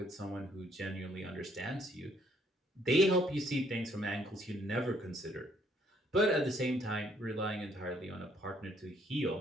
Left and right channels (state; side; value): normal; both; correlation 0.67